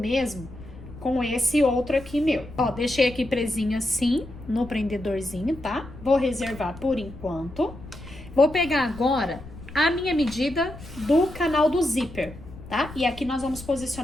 com esse outro aqui meu. Ó, deixei aqui presinho assim, no prendedorzinho, tá? Vou reservar por enquanto. Vou pegar agora a minha medida do canal do zíper, tá? E aqui nós vamos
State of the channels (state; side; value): noise; left; rumble, 16 dB below the sound